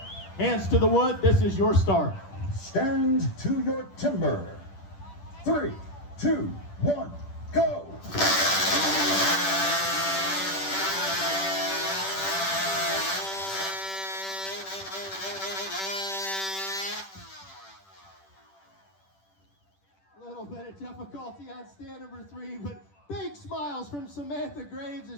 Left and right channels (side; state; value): right; late; 10 ms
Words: Hands to the wood, this is your start. Stand to your timber. 3, 2, 1, go! Little bit of difficulty on stand number 3, but big smiles from Samantha Graves